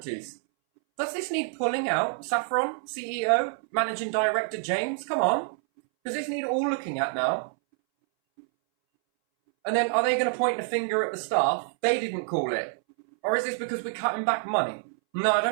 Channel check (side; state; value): left; silent; 60 dB below the other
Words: Does this need pulling out? Saffron, CEO, Managing Director James? Come on. Does this need all looking at now? And then are they going to point the finger at the staff? They didn't call it. Or is this because we're cutting back money? No, I